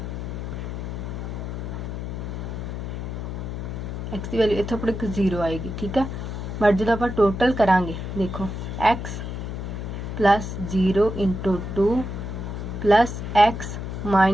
एक्स की वैल्यू इत्थों अपने 0 आएगी। ठीक है, बट जो आप टोटल करांगे देखो एक्स +0 × 2 प्लस एक्स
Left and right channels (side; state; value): left; noise; hum, 5 dB below the sound